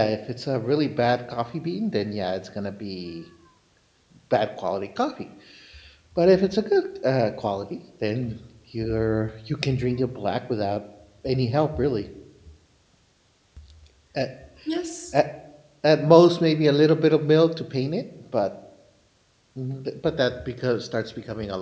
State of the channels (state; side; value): identical; both; correlation 1.00